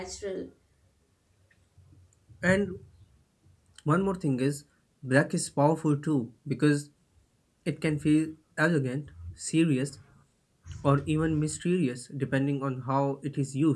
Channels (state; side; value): identical; both; correlation 1.00